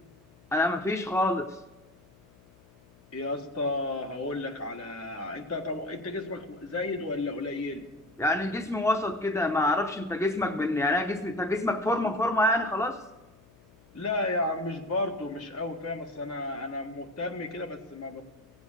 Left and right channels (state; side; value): noise; left; hum, 27 dB below the sound